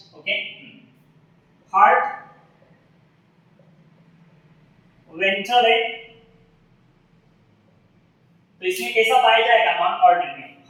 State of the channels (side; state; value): both; identical; correlation 1.00